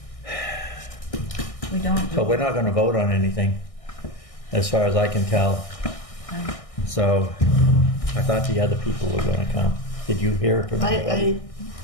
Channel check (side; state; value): right; late; 1.6 ms